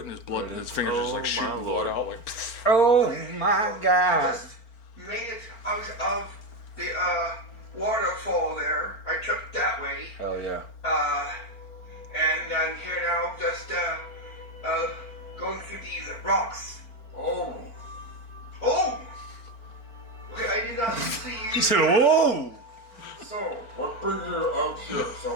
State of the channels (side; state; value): right; late; 4.4 ms